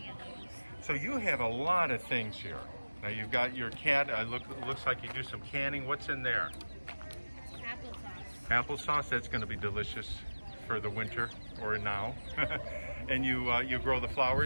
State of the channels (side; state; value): both; inverted; correlation -1.00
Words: of those. So you have a lot of things here. Now you've got your cat. Looks like you do some canning. What's in there? Applesauce. Applesauce. That's going to be delicious for the winter or now. And you grow the